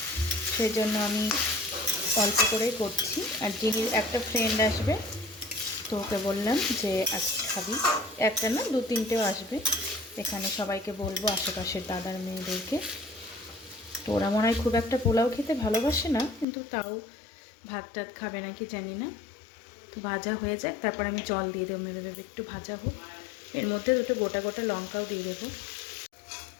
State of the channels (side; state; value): right; drops out; at 16.4 s